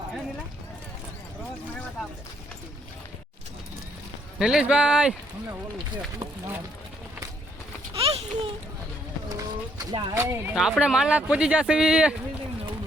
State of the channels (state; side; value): normal; both; correlation 0.69